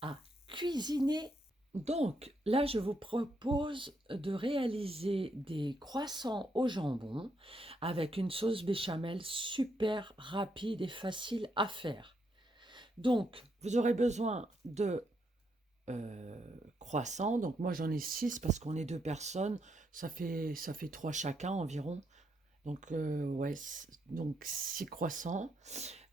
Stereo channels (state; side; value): normal; both; correlation 0.77